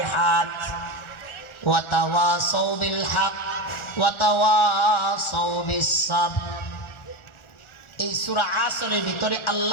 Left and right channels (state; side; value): late; right; 1.4 ms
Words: ওয়া তাওয়াসাউ বিল হক ওয়া তাওয়াসাউ বিস সাবর। এই সূরা আসরের ভিতরে